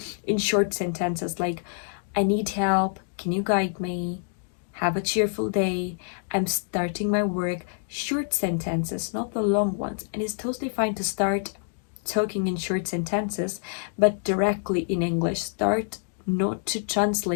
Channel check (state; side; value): silent; right; digital silence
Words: in short sentences like, I need help, can you guide me? Have a cheerful day. I'm starting my work. Short sentences, not the long ones. And it's totally fine to start talking in short sentences, but directly in English. Start not to